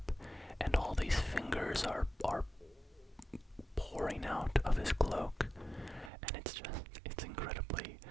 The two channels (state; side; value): drops out; left; at 6.1 s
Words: and all these fingers are pouring out of his cloak, and it's incredibly